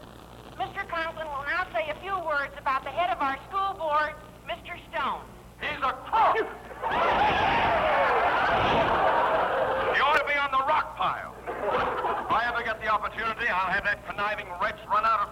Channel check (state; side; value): identical; both; correlation 1.00